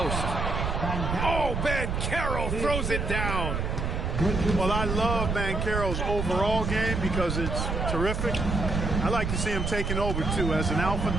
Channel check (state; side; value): noise; right; rumble, 1 dB below the sound